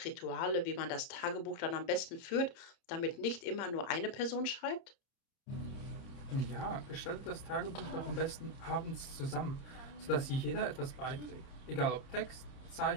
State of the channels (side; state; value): right; late; 30 ms